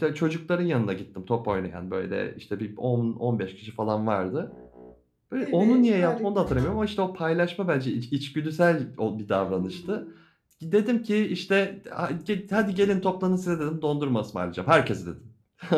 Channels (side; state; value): both; identical; correlation 1.00